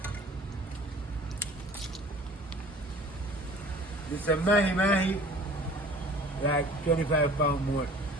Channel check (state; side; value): normal; both; correlation 0.47